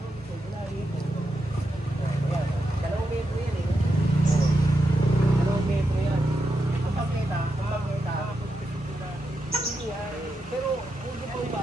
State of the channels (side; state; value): both; normal; correlation 0.85